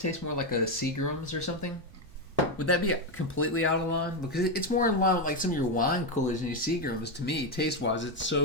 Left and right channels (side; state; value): right; noise; rumble, 20 dB below the sound